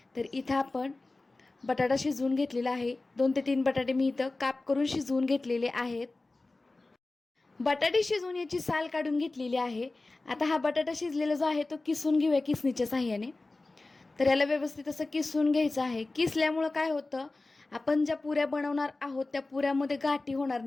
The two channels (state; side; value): quieter; right; 3.2 dB